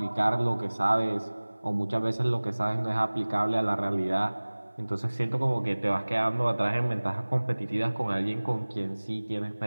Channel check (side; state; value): both; inverted; correlation -1.00